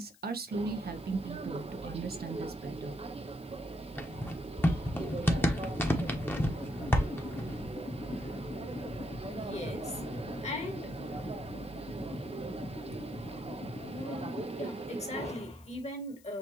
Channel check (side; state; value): left; noise; hiss, 26 dB below the sound